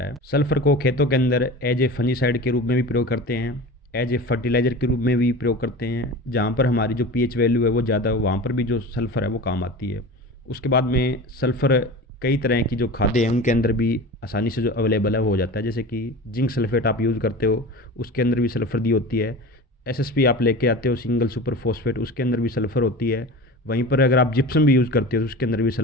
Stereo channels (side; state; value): both; normal; correlation 0.33